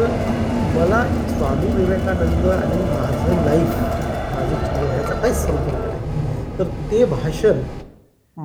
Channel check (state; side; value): identical; both; correlation 1.00